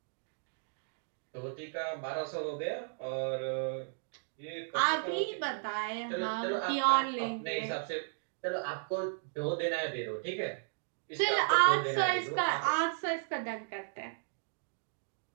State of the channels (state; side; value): silent; left; digital silence